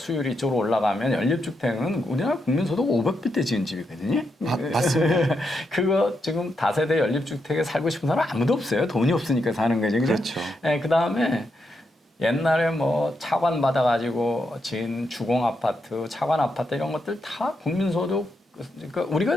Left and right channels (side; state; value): both; normal; correlation 0.83